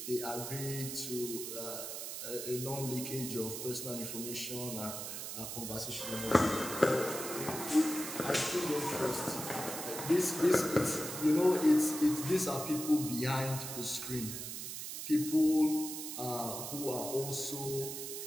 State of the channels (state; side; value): noise; right; hiss, 6 dB below the sound